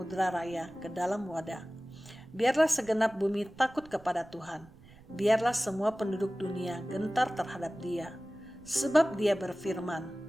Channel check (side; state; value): right; noise; rumble, 24 dB below the sound